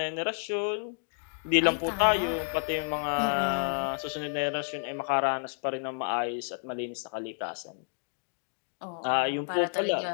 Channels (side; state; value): right; silent; digital silence